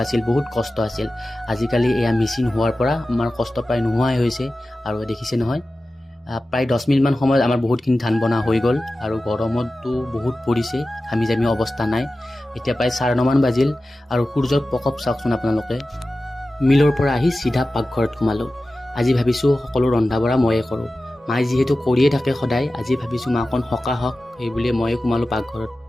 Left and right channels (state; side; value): normal; both; correlation 0.95